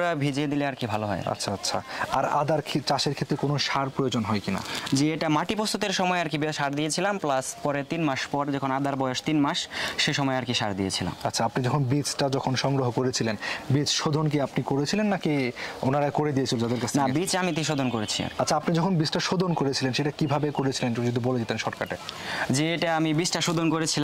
ভিজিয়ে দিলে আর কি ভালো হয়। আচ্ছা আচ্ছা, আর আদার চাষের ক্ষেত্রে কোনো সার প্রয়োজন হয় কিনা? জি, এটা মাটি প্রস্তুতের সময় আর কি সার দিয়েছিলাম, প্লাস পরে 3 মাস পর যখন আদার বয়স 3 মাস সে সময় আর কি সার দিয়েছিলাম। আচ্ছা, আপনি যখন বীজটা সংগ্রহ করেছিলেন, বীজ শোধন কি আপনি করেছিলেন নাকি ওনারা করে দিয়েছিল যাদের কাছে? না, বীজ আমি শোধন করেছি। আচ্ছা, আপনি যখন বীজটা শোধন করেছিলেন সেটা কিভাবে করেছিলেন একটু যদি বলে দিতেন শর্টকাটে। যে এটা আমি বীজটা শোধন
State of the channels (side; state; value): both; identical; correlation 1.00